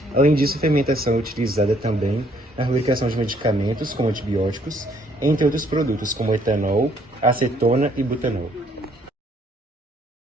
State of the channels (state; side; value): normal; both; correlation 0.65